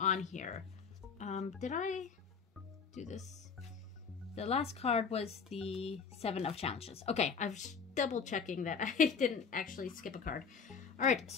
here. Did I do this? The last card was the 7 of Challenges. Okay, I was double checking that I didn't actually skip a card. All right,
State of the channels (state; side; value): quieter; right; 5.9 dB